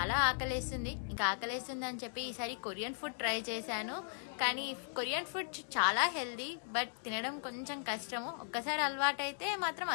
ఆకలేస్తుంది. ఇంకా ఆకలేస్తుంది అని చెప్పి ఈసారి కొరియన్ ఫుడ్ ట్రై చేశాను. కానీ కొరియన్ ఫుడ్ చాలా హెల్దీ, బట్ తినడం కొంచెం కష్టము. ఒక్కసారి అలవాటు అయితే మాత్రం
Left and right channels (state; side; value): silent; right; digital silence